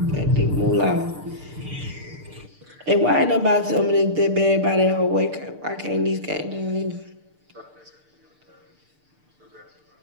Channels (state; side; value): late; left; 6.7 ms